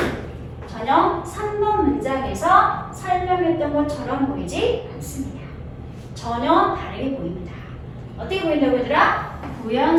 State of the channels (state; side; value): identical; both; correlation 1.00